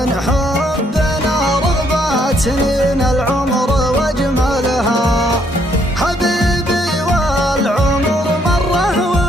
حبنا رغبات سنين العمر واجملها. حبيبي والعمر مره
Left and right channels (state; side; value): normal; both; correlation 0.70